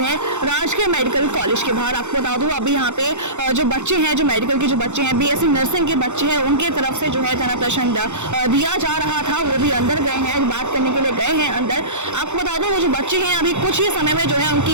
हैं राजकीय मेडिकल कॉलेज के बाहर। आपको बता दूं अभी यहाँ पे जो बच्चे हैं, जो मेडिकल के जो बच्चे हैं, बीएससी नर्सिंग के बच्चे हैं, उनके तरफ से जो है तना प्रश्न दिया जा रहा था। वो भी अंदर गए हैं, बात करने के लिए गए हैं अंदर। आपको बता दूं वो जो बच्चे हैं अभी कुछ ही समय में जो है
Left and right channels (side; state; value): left; late; 0.83 ms